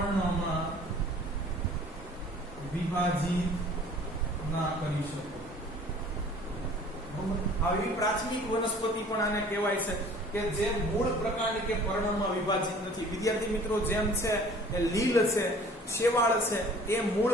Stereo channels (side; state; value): both; normal; correlation 0.50